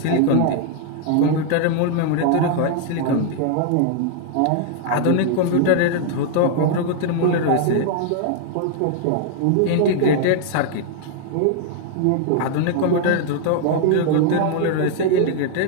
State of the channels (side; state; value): both; different; correlation 0.00